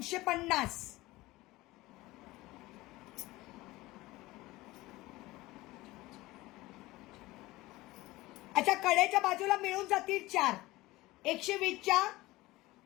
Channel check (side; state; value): right; quieter; 19.2 dB